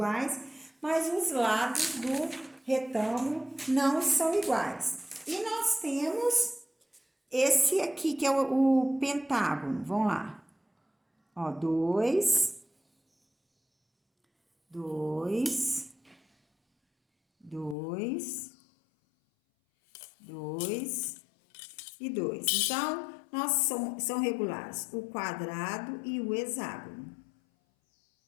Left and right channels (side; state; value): right; drops out; at 17.8 s